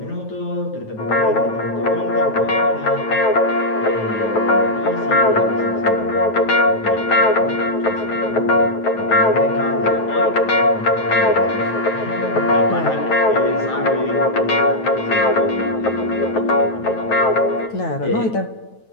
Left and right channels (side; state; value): right; late; 9.2 ms